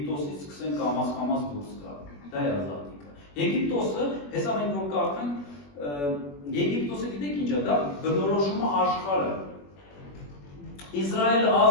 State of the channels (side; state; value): right; late; 21 ms